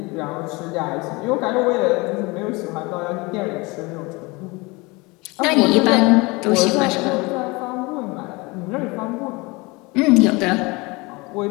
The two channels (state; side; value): quieter; right; 25.1 dB